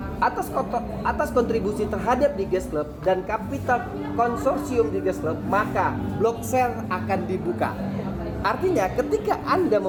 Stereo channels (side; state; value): both; identical; correlation 1.00